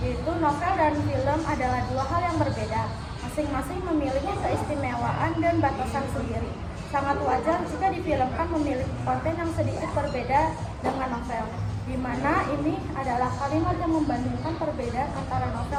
novel dan film adalah dua hal yang berbeda, masing-masing memiliki keistimewaan dan batasan sendiri. Sangat wajar jika difilmkan memiliki konten yang sedikit berbeda dengan novel, di mana ini adalah kalimat yang membandingkan perbedaan antara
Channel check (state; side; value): identical; both; correlation 1.00